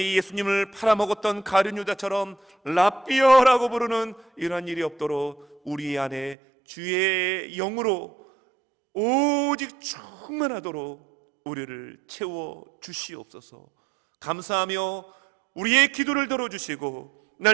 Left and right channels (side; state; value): left; drops out; at 6.4 s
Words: 예수님을 팔아먹었던 가룟 유다처럼 라삐여라고 부르는 이러한 일이 없도록 우리 안에 주의 영으로 오직 충만하도록 우리를 채워 주시옵소서. 감사하며 우리의 기도를 들어주시고